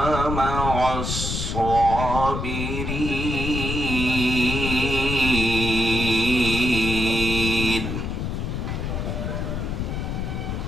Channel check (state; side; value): noise; left; rumble, 3 dB below the sound